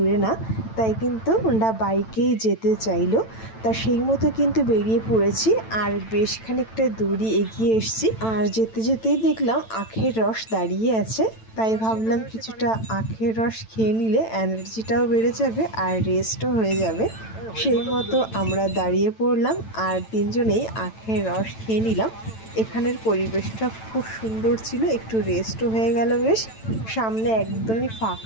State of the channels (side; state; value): right; late; 9.0 ms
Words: না, তাই কিন্তু ওরা বাইকেই যেতে চাইলো। তা সেই মতো কিন্তু বেরিয়ে পড়েছি, আর বেশ খানিকটা দূরই এগিয়ে এসেছি। আর যেতে যেতেই দেখলাম আখের রস দাঁড়িয়ে আছে, তাই ভাবলাম কিছুটা আখের রস খেয়ে নিলে এনার্জিটাও বেড়ে যাবে আর রেস্টও হয়ে যাবে। সেই মতো আমরা দাঁড়িয়ে পড়লাম আর তিনজনেই আখের রস খেয়ে নিলাম। এখানের পরিবেশটা খুব সুন্দর ছিল, একটু রেস্টও হয়ে গেল বেশ। সামনে একদমই